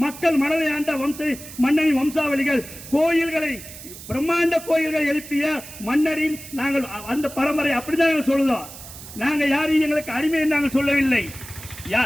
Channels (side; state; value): right; noise; hiss, 15 dB below the sound